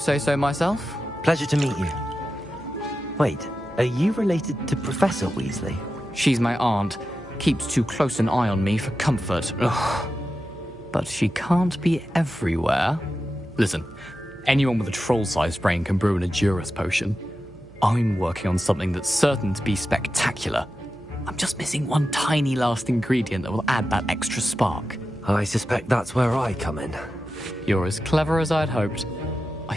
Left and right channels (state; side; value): noise; right; hum, 23 dB below the sound